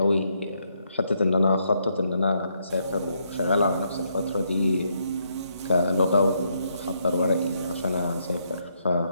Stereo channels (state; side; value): inverted; both; correlation -0.76